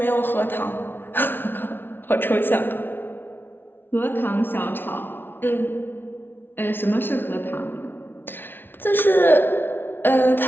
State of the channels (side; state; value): right; late; 0.10 ms